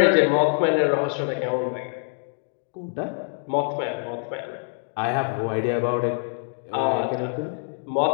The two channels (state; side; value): silent; right; 57 dB below the other